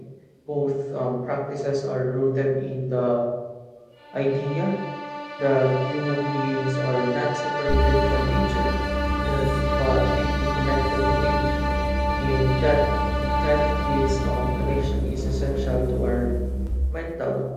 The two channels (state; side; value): identical; both; correlation 1.00